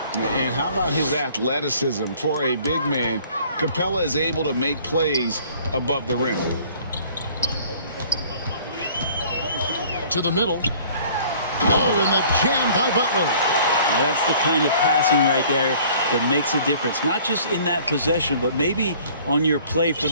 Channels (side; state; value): both; inverted; correlation -0.53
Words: And how about his athleticism? For a big man, Capella is able to make plays above the rim. To the middle. Oh, and the jam by Butler. Now that's the kind of passing right there that makes a difference. Not just in that possession, but maybe on your play for